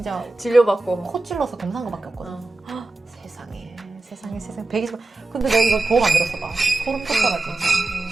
진료받고. 코 찔러서 검사한 거밖에 없거든. 어. 세상에 120만. 근데 내가 이거 보험 안 들었어 봐. 소름 돋더라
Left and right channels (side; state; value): left; quieter; 3.0 dB